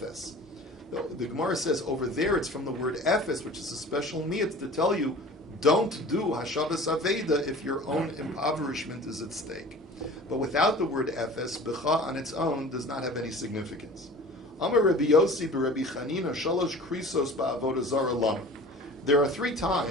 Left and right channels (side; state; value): both; normal; correlation 0.42